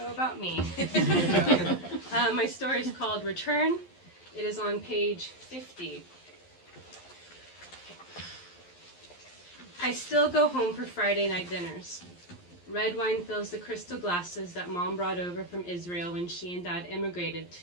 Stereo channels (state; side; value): late; right; 11 ms